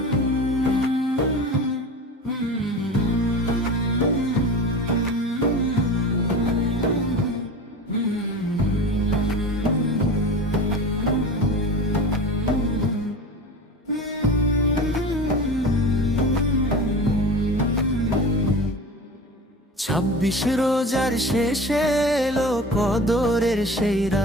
রোজার শেষে এলো কদরের সেই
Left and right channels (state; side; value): normal; both; correlation 0.34